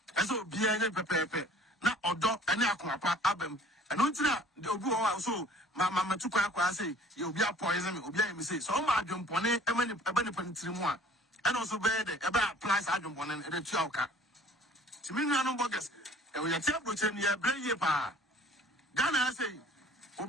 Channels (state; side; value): normal; both; correlation 0.51